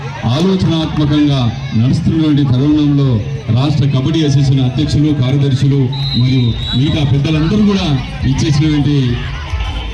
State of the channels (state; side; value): identical; both; correlation 1.00